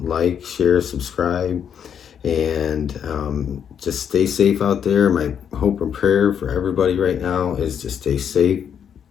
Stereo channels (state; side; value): quieter; right; 8.2 dB